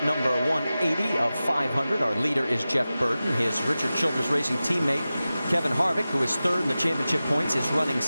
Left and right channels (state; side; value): inverted; both; correlation -0.95